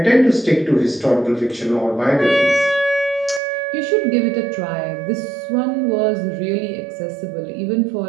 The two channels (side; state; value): left; drops out; at 3.4 s